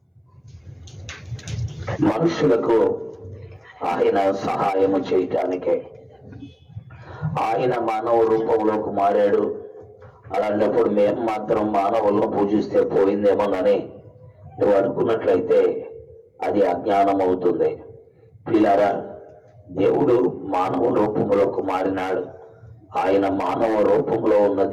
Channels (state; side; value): identical; both; correlation 1.00